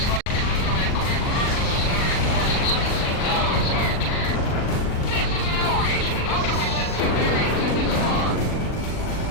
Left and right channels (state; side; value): late; right; 39 ms